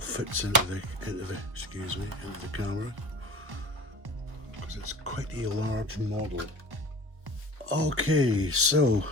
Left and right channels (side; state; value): left; late; 1.2 ms